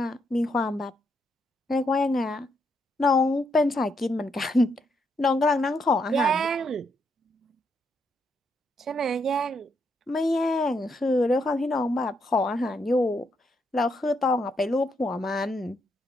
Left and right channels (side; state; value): both; normal; correlation 0.77